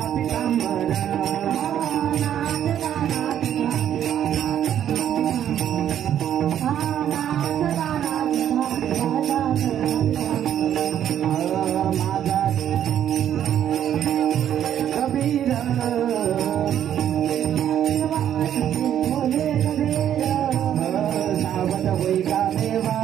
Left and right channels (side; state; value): left; quieter; 10.3 dB